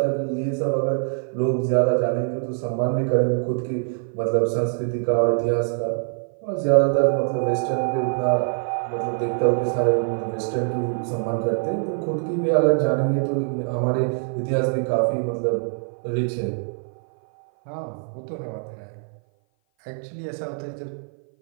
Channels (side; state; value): left; silent; 57 dB below the other